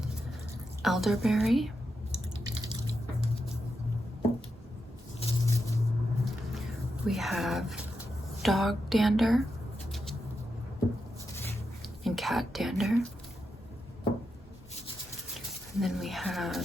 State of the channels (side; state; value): both; normal; correlation 0.86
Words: elderberry. We have dog dander and cat dander. And then we